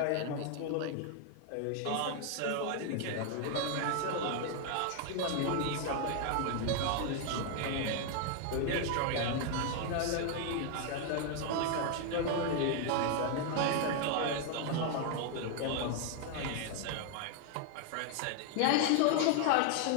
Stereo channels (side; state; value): both; different; correlation 0.00